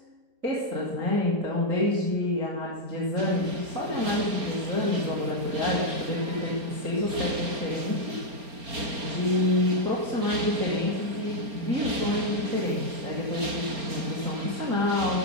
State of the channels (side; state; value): left; late; 4.3 ms